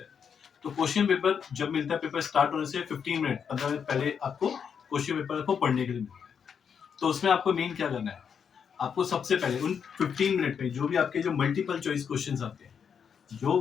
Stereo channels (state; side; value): quieter; right; 7.1 dB